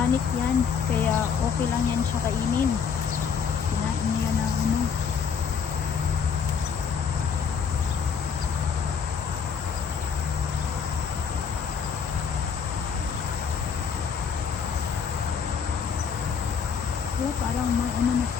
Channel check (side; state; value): right; quieter; 6.6 dB